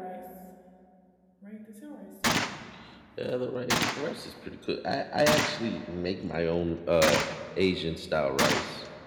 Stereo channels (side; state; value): both; identical; correlation 1.00